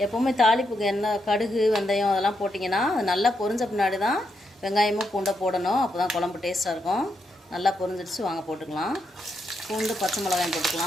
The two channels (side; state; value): both; normal; correlation 0.81